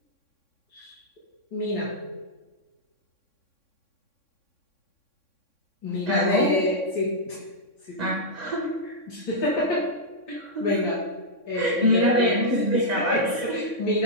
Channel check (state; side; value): late; right; 3.6 ms